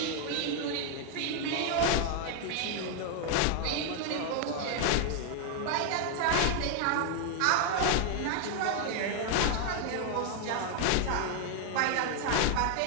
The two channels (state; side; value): different; both; correlation 0.00